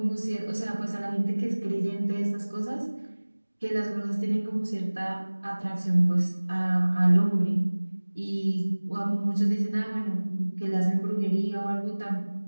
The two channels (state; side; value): inverted; both; correlation -1.00